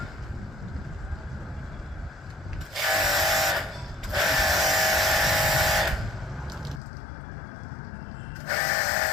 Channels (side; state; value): right; drops out; at 6.8 s